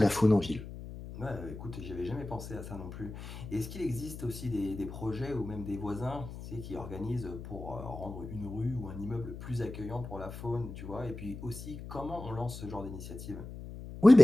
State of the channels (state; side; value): noise; left; hum, 10 dB below the sound